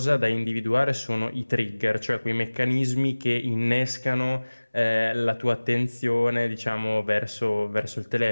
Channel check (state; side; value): inverted; both; correlation -1.00